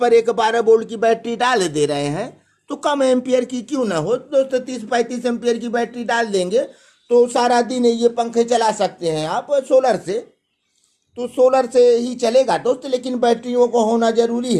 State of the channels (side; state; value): both; identical; correlation 1.00